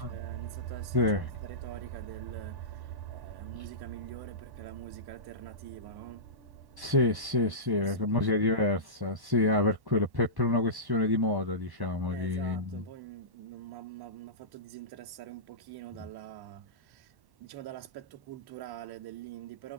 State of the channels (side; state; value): left; late; 1.1 ms